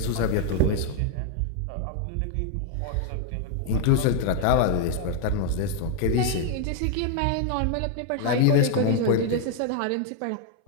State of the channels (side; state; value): both; different; correlation 0.00